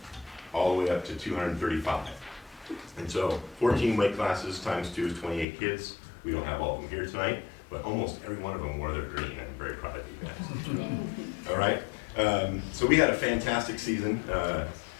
all the way up to 235. And so 14 weight classes times 2 is 28 kids. We don't have all of them here tonight, but almost every one of them wore their green, and I'm very proud of you guys. All right, so we had a fantastic season.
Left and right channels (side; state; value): right; drops out; at 5.5 s